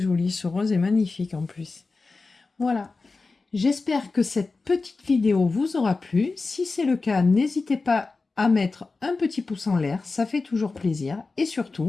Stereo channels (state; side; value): quieter; right; 3.9 dB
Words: Ce rose est magnifique en plus. Voilà. J'espère que cette petite vidéo vous aura plu. Si c'est le cas, n'hésitez pas à mettre un petit pouce en l'air. Ça fait toujours plaisir. Et